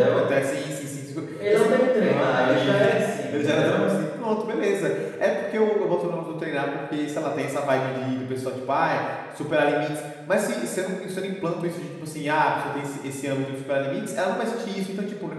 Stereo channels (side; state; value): both; identical; correlation 1.00